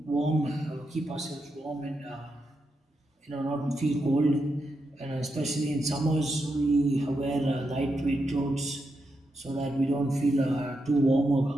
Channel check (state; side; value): normal; both; correlation 0.85